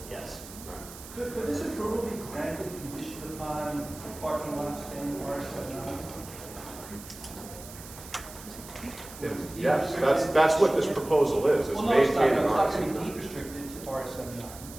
Yes. Could this approval be granted conditioned upon parking lots in RSM 9? Yes, that's what this proposal is Well, no, it's not maintaining going to RSM be 9. deed restricted to RSM 9.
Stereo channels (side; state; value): right; noise; hiss, 15 dB below the sound